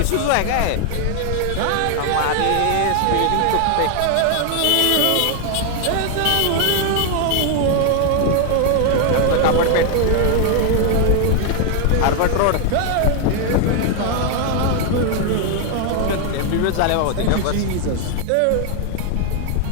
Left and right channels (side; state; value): both; different; correlation 0.00